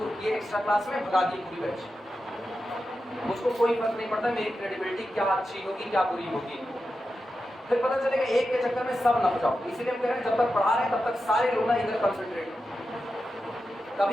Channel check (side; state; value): both; normal; correlation 0.90